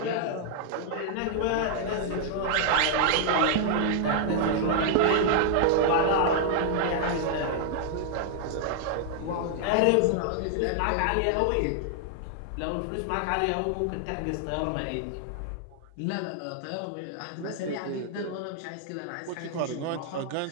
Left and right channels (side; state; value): both; different; correlation -0.01